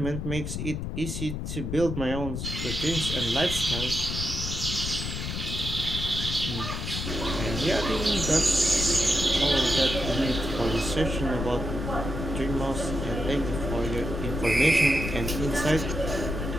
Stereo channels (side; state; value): left; noise; rumble, 4 dB below the sound